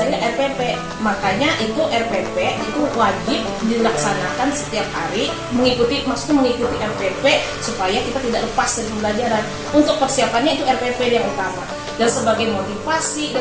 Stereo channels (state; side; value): identical; both; correlation 1.00